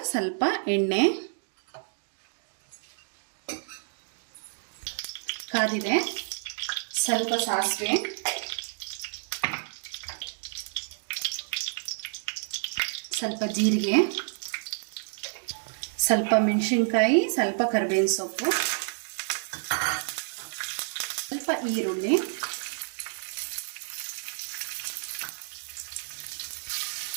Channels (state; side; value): silent; left; digital silence